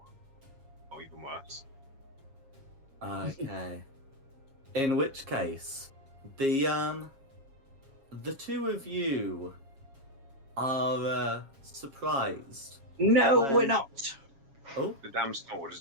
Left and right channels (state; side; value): late; left; 7.3 ms